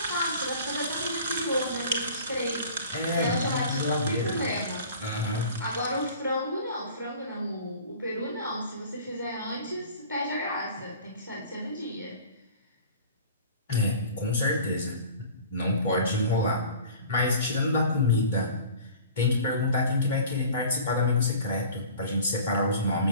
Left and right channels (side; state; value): both; inverted; correlation -0.44